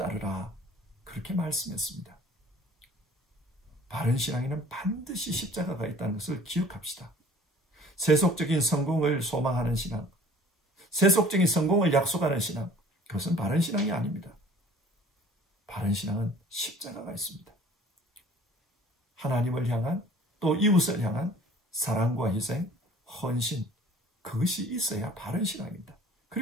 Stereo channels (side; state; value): both; normal; correlation 0.50